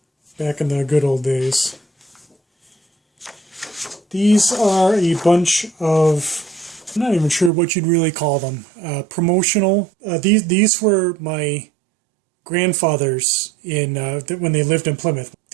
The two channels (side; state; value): left; drops out; at 7.5 s